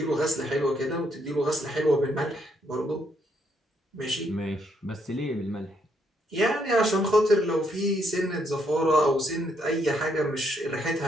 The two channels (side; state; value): both; normal; correlation 0.73